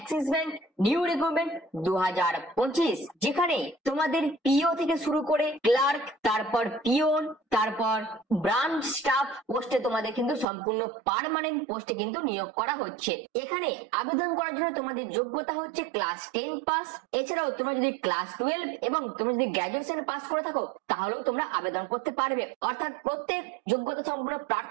ব্যাংক নিউ রিক্রুটমেন্ট 2025, যেখানে তোমাদের পিও থেকে শুরু করে ক্লার্ক, তারপর পিওন, তারপর ব্রাঞ্চ স্টাফ পোস্টে তোমাদের কিন্তু সম্পূর্ণ পার্মানেন্ট পোস্টে কিন্তু নিয়োগ করা হচ্ছে। এখানে আবেদন করার জন্য তোমাদের যোগ্যতা হচ্ছে ক্লাস 10 পাস। এছাড়াও তোমরা যদি ক্লাস 12 এবং তোমরা যদি গ্রাজুয়েশন পাস করে থাকো তাহলেও তোমরা আবেদন করতে পারবে। অর্থাৎ প্রত্যেক যোগ্যতা সম্পন্ন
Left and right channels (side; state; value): left; drops out; at 10.5 s